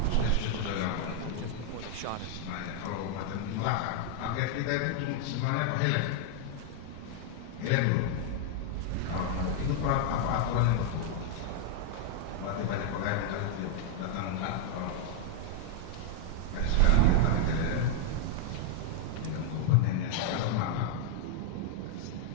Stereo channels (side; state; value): both; different; correlation 0.00